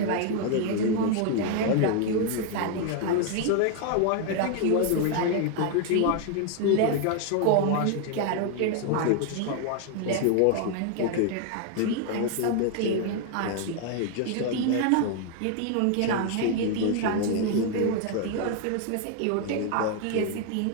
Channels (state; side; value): different; both; correlation 0.00